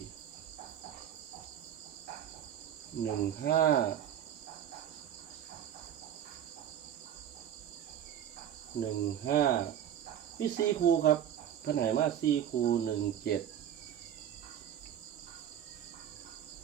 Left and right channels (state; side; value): quieter; left; 10.0 dB